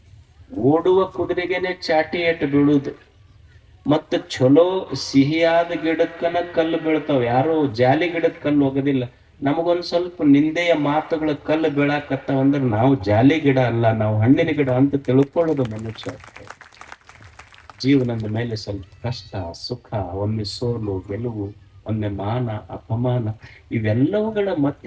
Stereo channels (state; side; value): identical; both; correlation 1.00